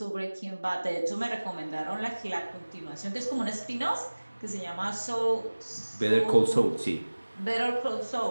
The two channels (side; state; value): both; inverted; correlation -1.00